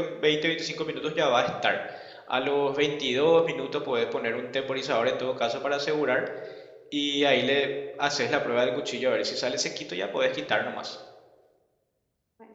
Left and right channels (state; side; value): identical; both; correlation 1.00